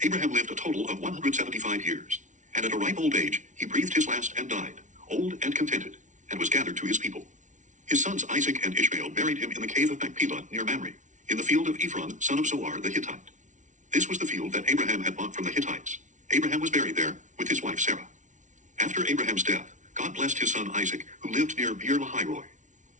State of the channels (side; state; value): left; late; 0.36 ms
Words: Abraham lived a total of 175 years, and at a ripe old age he breathed his last and died, old and contented, and was gathered to his people. His sons Isaac and Ishmael buried him in the cave of Machpelah near Mamre, in the field of Ephron, son of Zohar the Hittite. This was the field that Abraham had bought from the Hittites. Abraham was buried there with his wife Sarah. After Abraham's death, God blessed his son Isaac, who lived near Beer Lahai-roi.